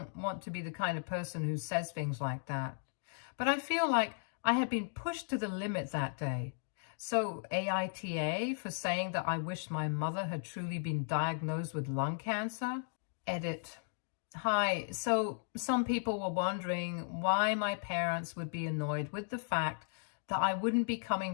want to be the kind of person who says things like that. But I feel like I had been pushed to the limit that day. So AITA for saying that I wished my mother had truly been diagnosed with lung cancer? Edit. Hi, so some people were wondering why my parents would be annoyed with the fact that I wouldn't be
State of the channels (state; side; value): silent; right; digital silence